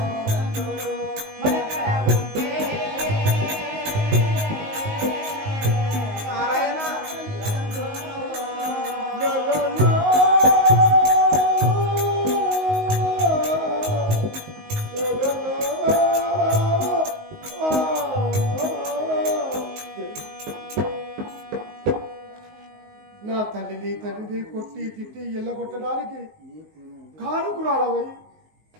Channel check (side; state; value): left; late; 19 ms